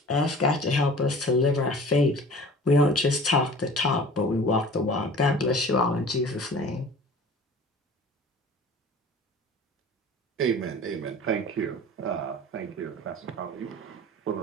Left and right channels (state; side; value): normal; both; correlation 0.43